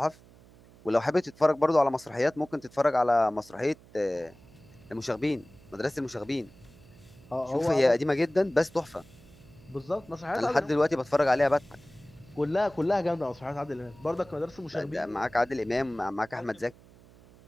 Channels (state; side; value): noise; right; hum, 24 dB below the sound